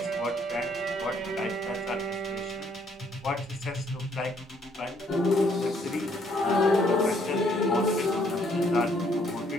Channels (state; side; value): normal; both; correlation 0.67